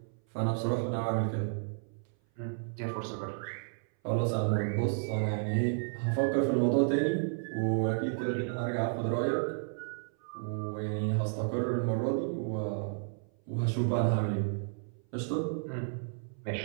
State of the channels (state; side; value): silent; left; 56 dB below the other